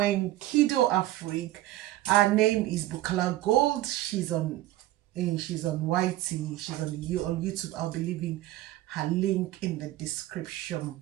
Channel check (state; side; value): quieter; left; 15.8 dB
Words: Kido Afrique. Her name is Bukala Gold. She's on YT. She's on YouTube. I'll be leaving her link in the description